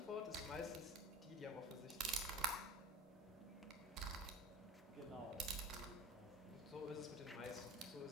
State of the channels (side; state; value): both; normal; correlation 0.39